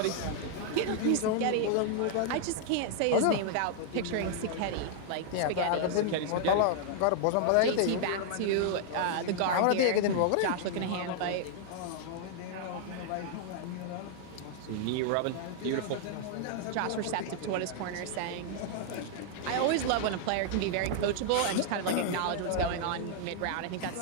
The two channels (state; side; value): different; both; correlation -0.01